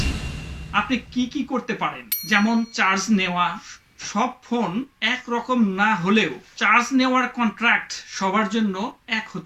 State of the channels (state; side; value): identical; both; correlation 1.00